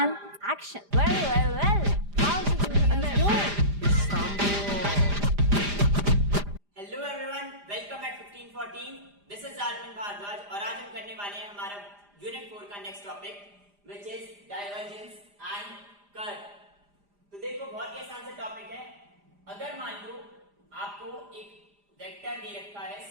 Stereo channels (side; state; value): left; late; 5.0 ms